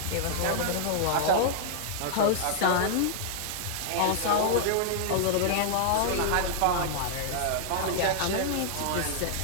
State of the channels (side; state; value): both; different; correlation -0.01